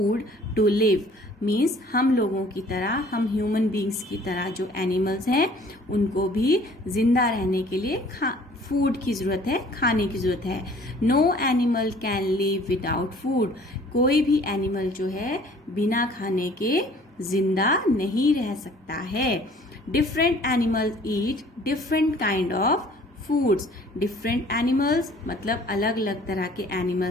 to live. Means हम लोगों की तरह, हम ह्यूमन बींग्स की तरह जो एनिमल्स हैं उनको भी जिंदा रहने के लिए फूड की जरूरत है, खाने की जरूरत है. No animal can live without food. कोई भी एनिमल जो है बिना खाने के जिंदा नहीं रह सकता है. Different animals eat different kind of foods. Different animals मतलब अलग अलग तरह के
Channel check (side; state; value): both; normal; correlation 0.54